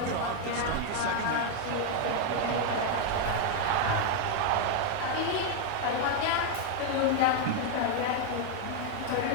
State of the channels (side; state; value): both; different; correlation 0.00